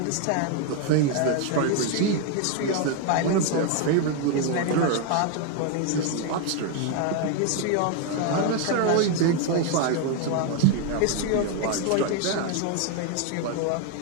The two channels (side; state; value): both; different; correlation 0.01